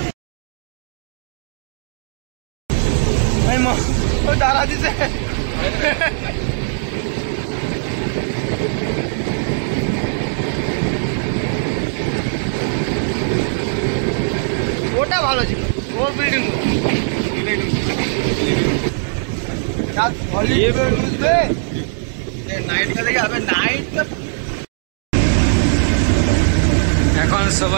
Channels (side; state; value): left; silent; digital silence